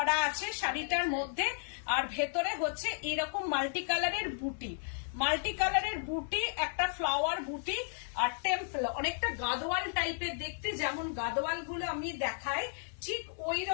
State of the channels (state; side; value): silent; right; 55 dB below the other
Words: আছে শাড়িটার মধ্যে, আর ভেতরে হচ্ছে এরকম মাল্টি কালারের বুটি, মাল্টি কালারের বুটি, একটা ফ্লাওয়ার বুটি আর টেম্পল, অনেকটা গাদোয়াল টাইপের দেখতে, যেমন গাদোয়াল গুলো আমি দেখাই ঠিক ওই